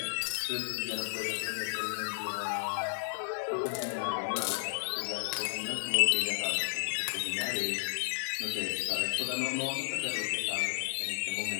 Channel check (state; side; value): silent; right; 56 dB below the other